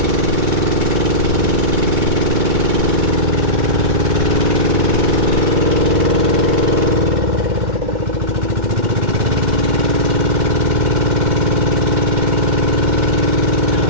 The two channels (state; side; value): late; left; 2.1 ms